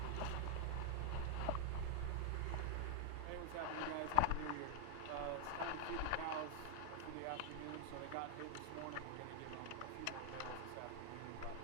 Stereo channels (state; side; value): different; both; correlation 0.00